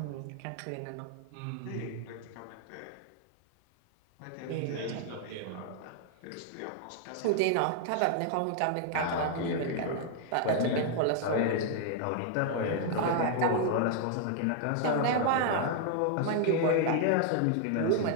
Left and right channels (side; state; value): both; different; correlation 0.00